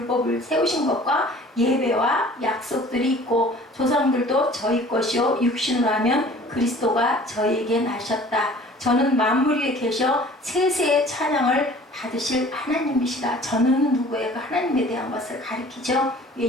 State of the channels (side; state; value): both; normal; correlation 0.48